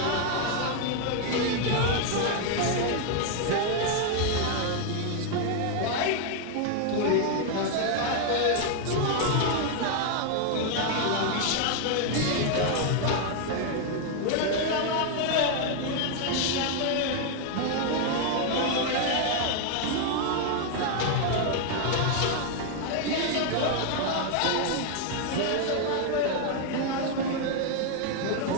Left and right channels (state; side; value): different; both; correlation 0.00